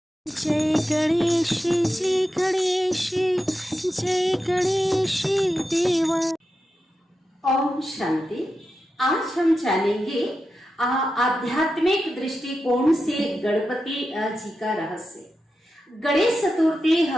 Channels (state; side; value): normal; both; correlation 0.90